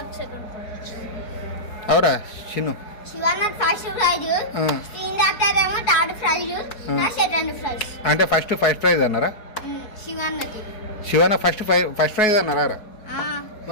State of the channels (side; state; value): right; late; 4.7 ms